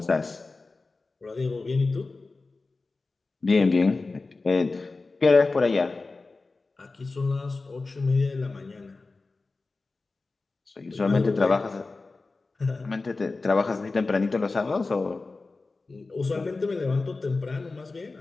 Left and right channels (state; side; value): quieter; right; 3.7 dB